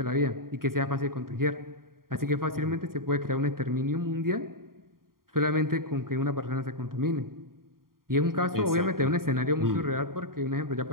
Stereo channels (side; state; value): left; late; 0.92 ms